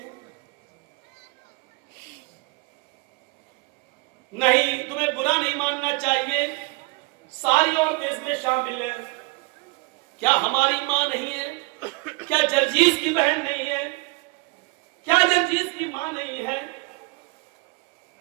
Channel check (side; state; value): left; quieter; 27.2 dB